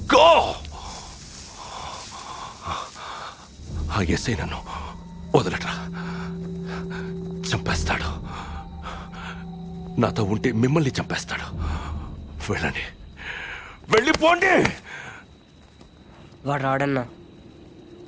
గో! ఆ ఎస్ఐ నన్ను వదలట్రా, చంపేస్తాడు. నాతో ఉంటే మిమ్మల్ని చంపేస్తాడు. వెళ్ళండి, వెళ్ళిపోండి. వాడు రాడన్నా,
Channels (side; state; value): both; identical; correlation 1.00